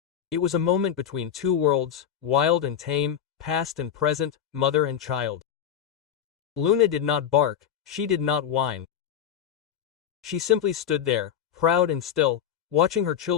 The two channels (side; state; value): right; quieter; 9.1 dB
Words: It was a moment between 2 worlds, wild and tame, past and present, mother and child. Luna did not bark, she did not whine. She simply stood there, proud and still, watching her